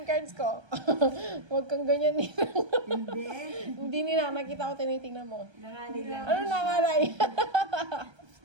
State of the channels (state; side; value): late; left; 1.3 ms